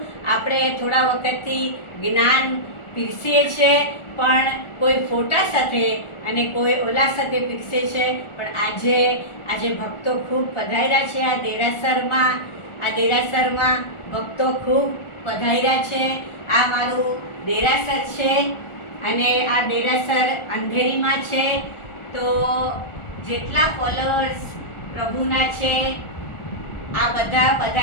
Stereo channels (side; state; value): right; late; 1.4 ms